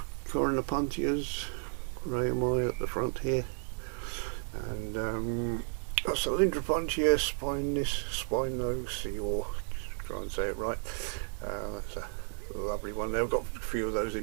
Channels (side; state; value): left; silent; 56 dB below the other